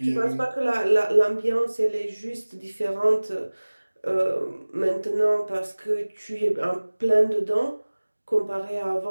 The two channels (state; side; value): inverted; both; correlation -1.00